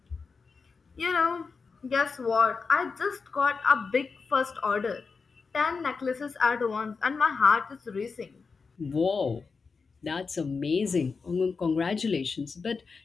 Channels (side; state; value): right; quieter; 4.9 dB